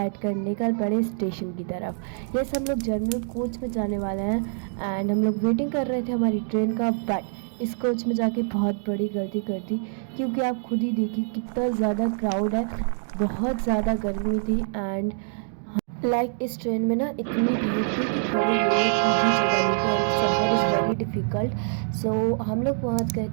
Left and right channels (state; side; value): silent; left; digital silence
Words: कर निकल पड़े स्टेशन की तरफ। यस, हम लोग जनरल कोच में जाने वाले हैं एंड हम लोग वेटिंग कर रहे थे हमारी ट्रेन का, बट इस कोच में जाके बहुत बड़ी गलती कर दी, क्योंकि आप खुद ही देखिए कितना ज़्यादा क्राउड है, बहुत ज़्यादा गर्मी थी। एंड इस ट्रेन में ना इतनी भीड़ थी कि खड़े होने की भी जगह नहीं थी एंड सफ़र इज़ वेरी डिफ़िकल्ट। सो हम लोग पहुंच गए